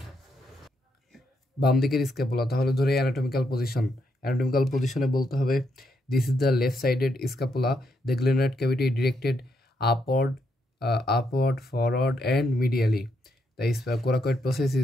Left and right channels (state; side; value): normal; both; correlation 0.78